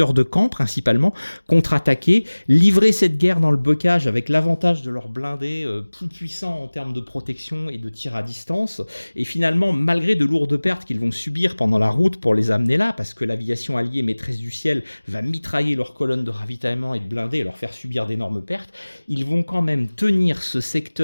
de Caen principalement, contre-attaquer, livrer cette guerre dans le bocage avec l'avantage de leurs blindés plus puissants en termes de protection et de tir à distance. Et finalement, malgré de lourdes pertes qu'ils vont subir pendant la route pour les amener là, parce que l'aviation alliée maîtresse du ciel va mitrailler leurs colonnes de ravitaillement et de blindés et leur faire subir d'énormes pertes, ils vont quand même tenir ce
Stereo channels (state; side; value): inverted; both; correlation -1.00